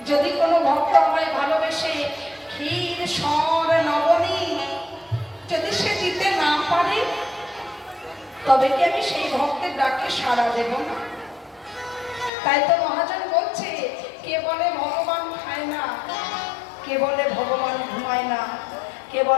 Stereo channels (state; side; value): drops out; right; at 12.3 s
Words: যদি কোনো ভক্ত আমায় ভালোবেসে ক্ষীর সর নবনী যদি সে দিতে না পারে, তবে কি আমি সেই ভক্তের ডাকে সাড়া দেব না? তাই তো মহাজন বলছে, কে বলে ভগবান খায় না, কে বলে ভগবান ঘুমায় না, কে